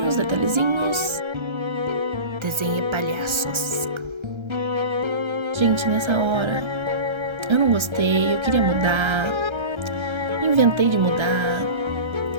Desenhe palhaços. Gente, nessa hora eu não gostei, eu queria mudar. Inventei de mudar.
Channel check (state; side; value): late; left; 1.3 ms